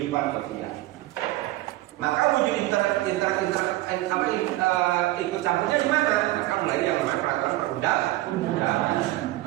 sosial. Maka wujud ikut campurnya di mana? Maka mulai yang namanya peraturan perundang-undangan.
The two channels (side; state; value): left; quieter; 17.3 dB